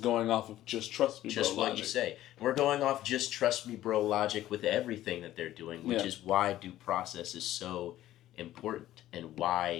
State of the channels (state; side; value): quieter; right; 13.9 dB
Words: going off of just trust me, bro, just what logic. You say. We're going off just trust me, bro, logic with everything that they're doing, which is why due process is so important, and